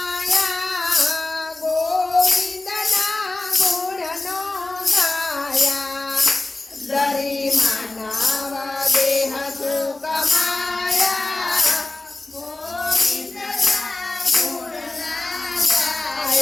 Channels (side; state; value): right; quieter; 3.0 dB